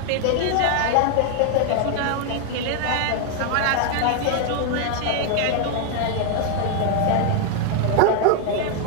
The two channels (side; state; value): both; different; correlation 0.00